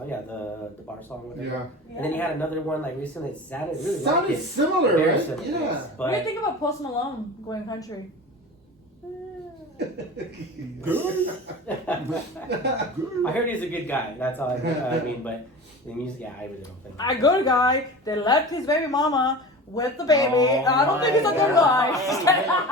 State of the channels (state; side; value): normal; both; correlation 0.34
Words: yeah, the bar song. Whatever. Yeah. And then he had another one like recently. It sounded really Sounded like it. similar, Very right? similar, Yeah. yes. What do you But think about Post Malone going country? I heard he's a good guy. That's all I mean. But the music, yeah, I really don't think. A good guy that left his baby mama with the baby. Oh I don't think he's a my good God.